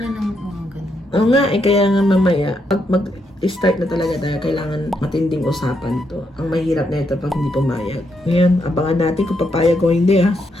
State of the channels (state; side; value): normal; both; correlation 0.79